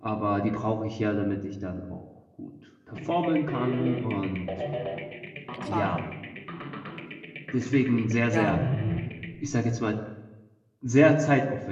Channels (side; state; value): both; identical; correlation 1.00